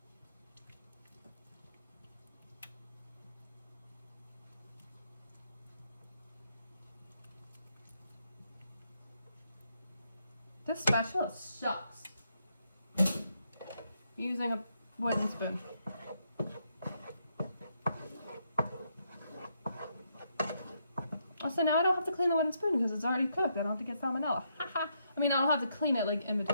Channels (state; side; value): inverted; both; correlation -0.77